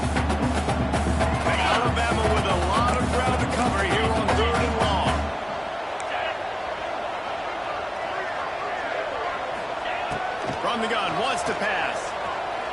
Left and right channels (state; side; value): identical; both; correlation 1.00